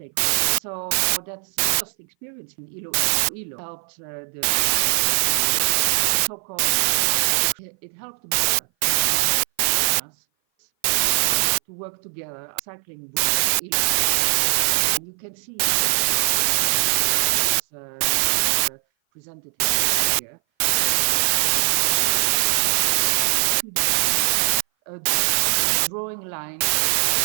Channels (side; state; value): left; silent; 58 dB below the other